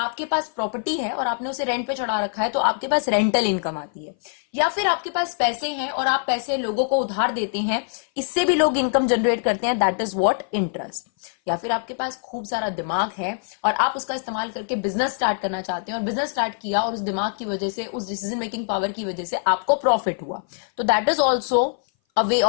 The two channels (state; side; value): silent; right; 58 dB below the other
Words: पास प्रॉपर्टी है और आपने उसे रेंट पे चढ़ा रखा है तो आपके पास रेंटल इनकम आती है। या फिर आपके पास पैसे हैं और आप पैसे लोगों को उधार देते हैं, इससे भी लोग इनकम जनरेट करते हैं, दैट इज व्हाट इंटरेस्ट। या फिर आपके पास खूब सारा दिमाग है और आप उसका इस्तेमाल करके बिजनेस स्टार्ट करना चाहते हैं और बिजनेस स्टार्ट किया और उस दिमाग की वजह से, उस डिसीजन मेकिंग पावर की वजह से आपको प्रॉफिट हुआ, तो that is also a way